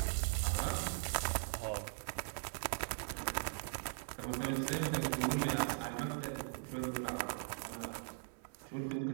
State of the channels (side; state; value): left; silent; 51 dB below the other